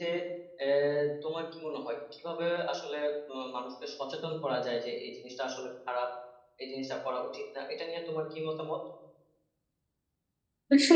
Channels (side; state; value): both; identical; correlation 1.00